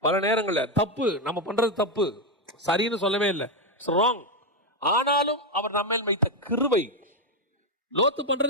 பல நேரங்கள்ல தப்பு நம்ம பண்றது தப்பு, சரின்னு சொல்லவே இல்லை, ராங். ஆனாலும் அவர் நம்ம மேல் வைத்த கிருபை. லோத்து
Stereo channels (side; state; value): both; normal; correlation 0.06